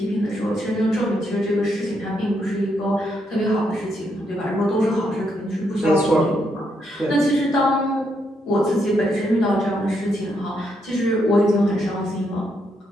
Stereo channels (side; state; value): both; normal; correlation 0.78